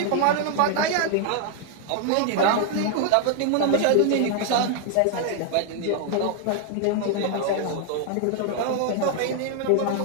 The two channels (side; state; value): both; different; correlation 0.00